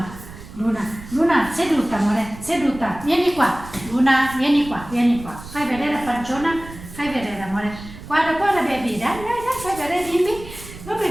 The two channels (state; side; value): noise; right; rumble, 15 dB below the sound